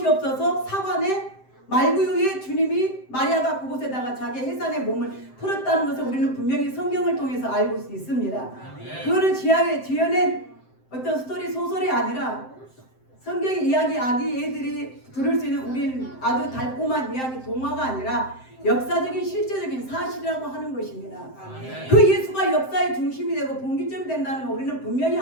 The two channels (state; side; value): late; right; 7.7 ms